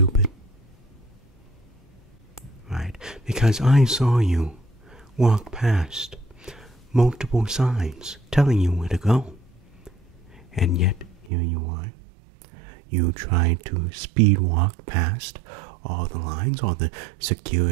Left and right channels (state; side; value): drops out; left; at 11.3 s